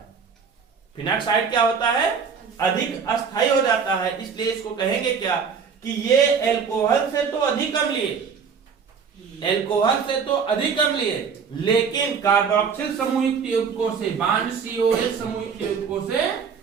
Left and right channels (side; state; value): left; quieter; 6.2 dB